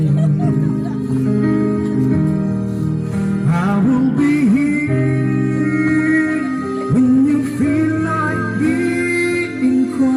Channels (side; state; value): both; identical; correlation 1.00